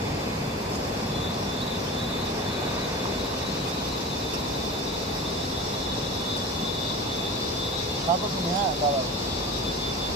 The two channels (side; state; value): both; normal; correlation 0.32